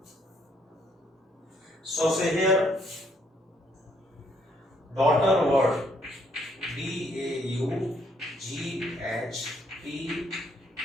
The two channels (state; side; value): normal; both; correlation 0.69